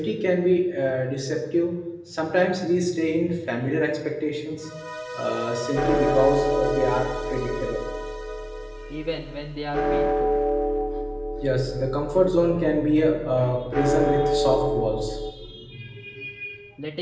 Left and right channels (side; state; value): both; identical; correlation 1.00